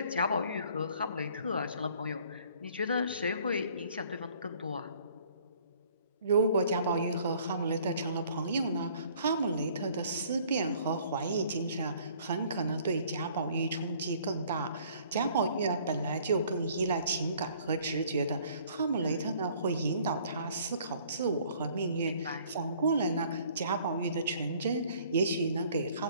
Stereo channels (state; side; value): inverted; both; correlation -0.57